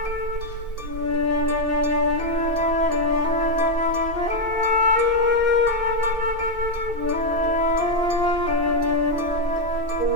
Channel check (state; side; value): late; left; 2.6 ms